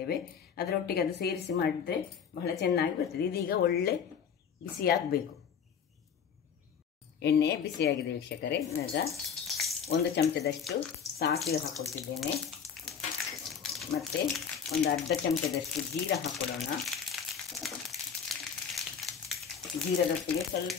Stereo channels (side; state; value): right; quieter; 7.2 dB